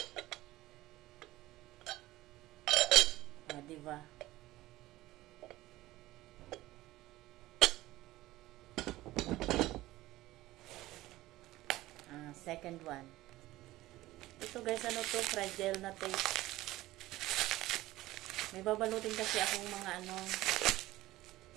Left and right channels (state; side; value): quieter; left; 17.0 dB